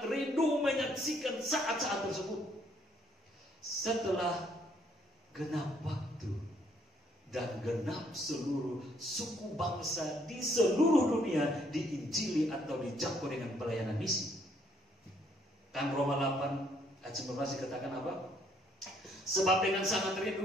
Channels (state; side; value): normal; both; correlation 0.68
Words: rindu menyaksikan saat-saat tersebut. Setelah genap waktu dan genap seluruh suku bangsa di seluruh dunia diinjili atau dijangkau dengan pelayanan misi. Kan Roma 8 ayat 19 dikatakan apa? Sebab dengan sangat